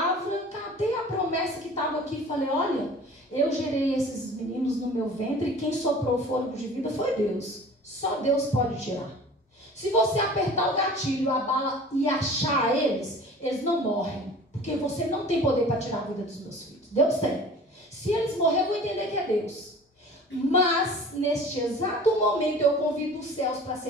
catei a promessa que estava aqui e falei: olha, eu gerei esses meninos no meu ventre e quem soprou o fôlego de vida foi Deus. Só Deus pode tirar. Se você apertar o gatilho, a bala e achar eles não morrem. Porque você não tem poder para tirar a vida dos meus filhos. Deus tem. Se eles morrerem, eu vou entender que é Deus. Mas, neste exato momento, eu convido os céus para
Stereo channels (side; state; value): both; normal; correlation 0.43